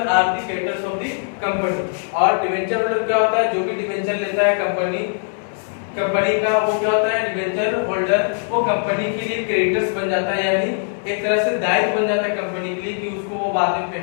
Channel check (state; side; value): silent; right; 62 dB below the other